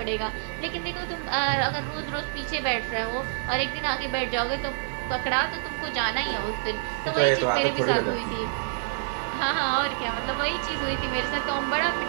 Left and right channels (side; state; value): left; silent; 60 dB below the other